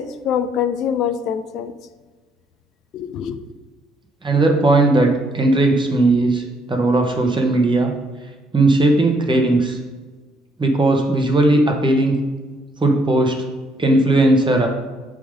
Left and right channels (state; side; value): normal; both; correlation 0.71